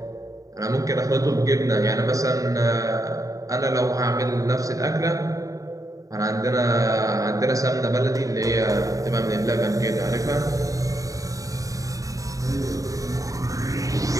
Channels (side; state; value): left; late; 0.16 ms